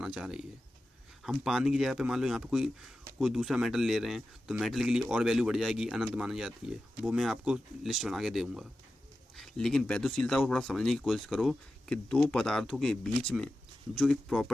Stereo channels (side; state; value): both; normal; correlation 0.93